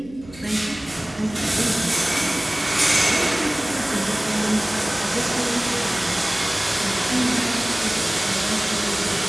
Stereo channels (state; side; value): noise; right; hum, 19 dB below the sound